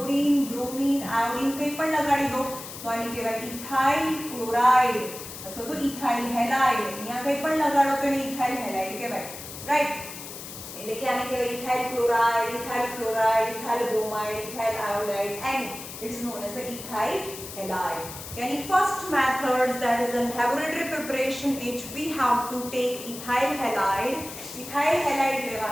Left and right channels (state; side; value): noise; left; hiss, 11 dB below the sound